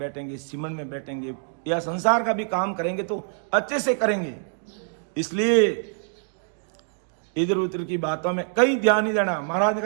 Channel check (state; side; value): silent; left; digital silence